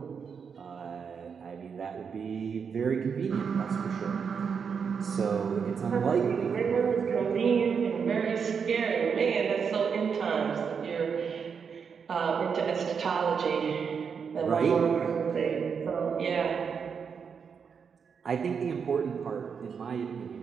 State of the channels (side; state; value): left; quieter; 6.4 dB